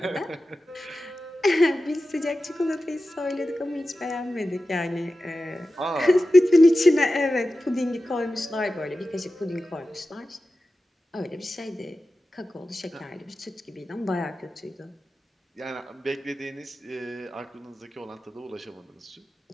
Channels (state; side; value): normal; both; correlation 0.94